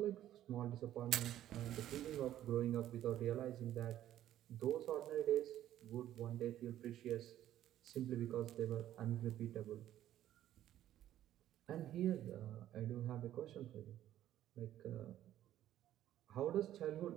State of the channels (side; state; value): left; quieter; 12.4 dB